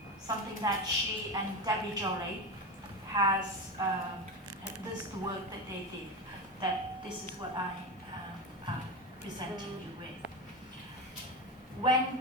something that she and Debbie Jolie has, this is the work that they did, that this is what I'm presenting you with.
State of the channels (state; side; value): normal; both; correlation 0.20